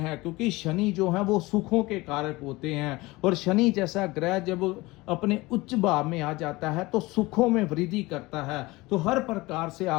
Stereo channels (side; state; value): right; quieter; 21.4 dB